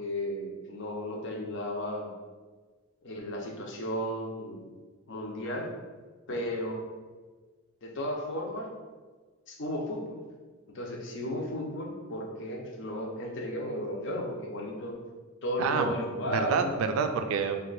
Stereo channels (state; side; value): normal; both; correlation 0.00